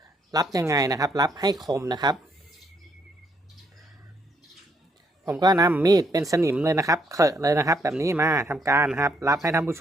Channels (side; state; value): both; normal; correlation 0.72